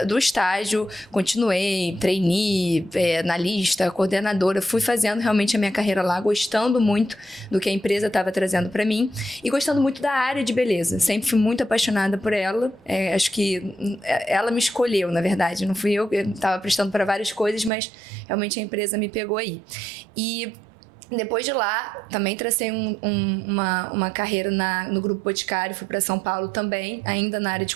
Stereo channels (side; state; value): left; drops out; at 17.7 s